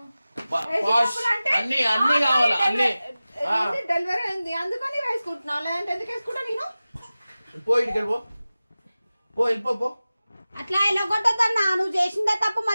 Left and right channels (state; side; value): inverted; both; correlation -0.96